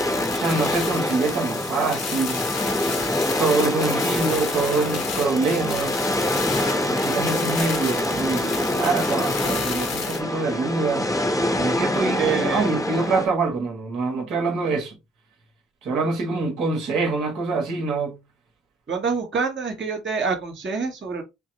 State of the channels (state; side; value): normal; both; correlation 0.64